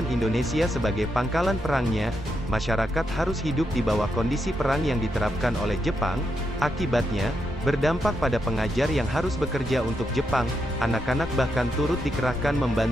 Indonesia sebagai pangkalan perangnya. Masyarakat harus hidup di bawah kondisi perang yang diterapkan oleh Jepang. Akibatnya, berdampak pada pengajar yang harus bekerja untuk Jepang. Anak-anak bahkan turut dikerahkan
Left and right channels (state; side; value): normal; both; correlation 0.82